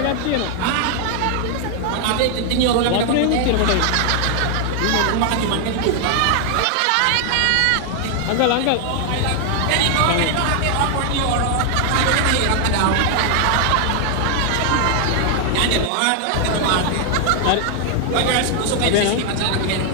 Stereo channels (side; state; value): both; different; correlation 0.00